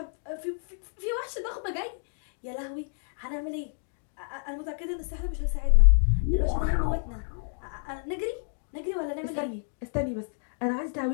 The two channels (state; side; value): silent; right; digital silence